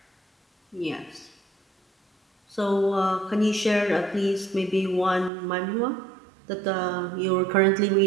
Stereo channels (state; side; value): drops out; left; at 5.3 s